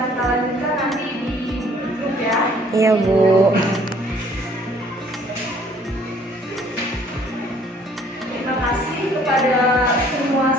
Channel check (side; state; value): both; normal; correlation 0.59